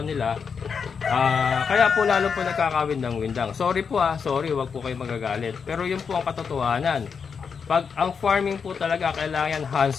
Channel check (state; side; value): quieter; right; 6.1 dB